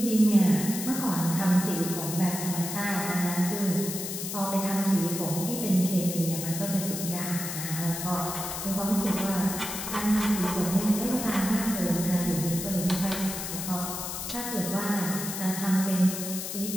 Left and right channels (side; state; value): left; noise; hiss, 5 dB below the sound